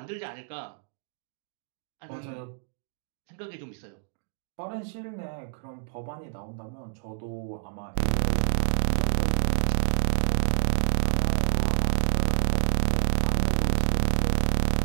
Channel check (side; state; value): left; silent; digital silence